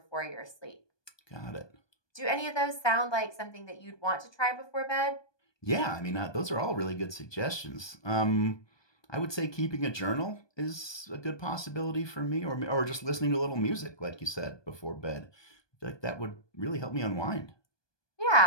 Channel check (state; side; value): late; right; 1.2 ms